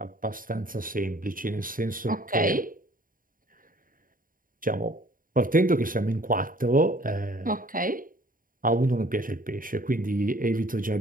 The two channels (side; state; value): left; late; 0.40 ms